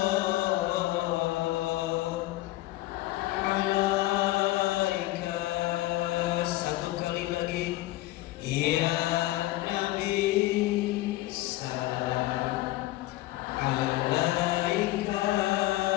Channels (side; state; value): right; quieter; 17.4 dB